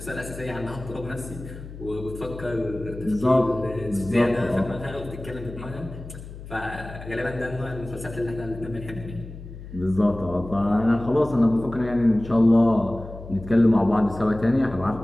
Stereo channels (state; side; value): noise; left; hum, 13 dB below the sound